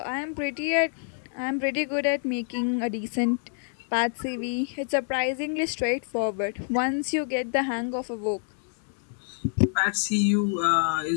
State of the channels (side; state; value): right; silent; 60 dB below the other